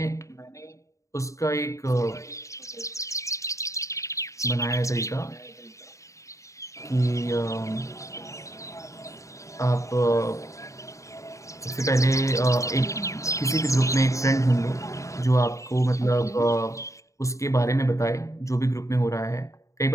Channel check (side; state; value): right; late; 0.15 ms